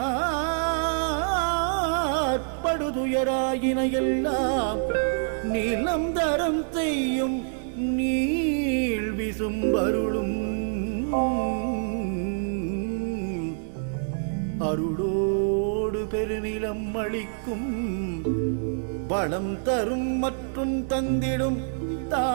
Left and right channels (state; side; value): silent; left; 61 dB below the other